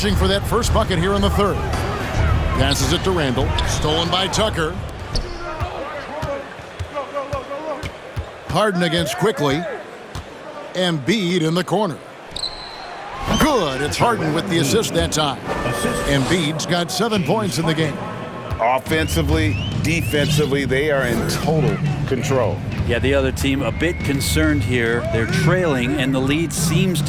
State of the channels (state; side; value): identical; both; correlation 1.00